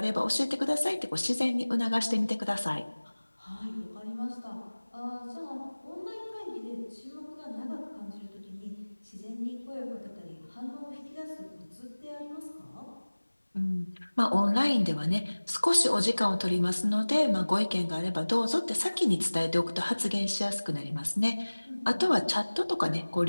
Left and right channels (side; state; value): both; inverted; correlation -1.00